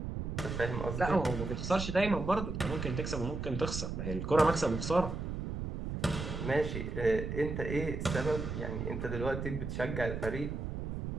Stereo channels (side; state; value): right; noise; rumble, 4 dB below the sound